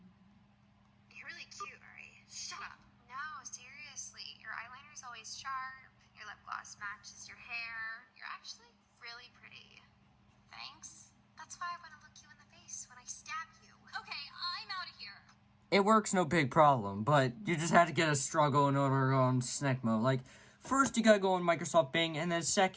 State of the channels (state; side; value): identical; both; correlation 1.00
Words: You're really cute, Ari. Shut up. No, seriously. Your eyeliner's always sharp. Your lip gloss matches your hair. You're actually really pretty. Thanks. That's why I want to look you in the face when I stab you. Okay, I'm out of here. It works, no big problem, but you just had to get a struggle in order to go on SNECMO. Like, first you gotta go on Microsoft Bing, and then